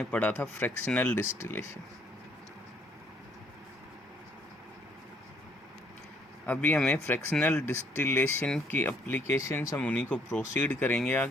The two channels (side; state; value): both; normal; correlation 0.66